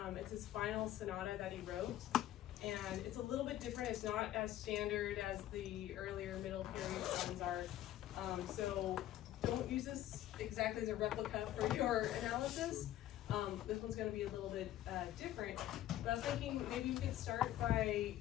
It's his final sonata that he wrote, and it's a little bit different. It's not as standard as the earlier middle period songs are. So don't use this exactly as a replica for your analysis. This one's going to be a little bit different, but I was thinking maybe we could start by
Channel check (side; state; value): right; quieter; 13.0 dB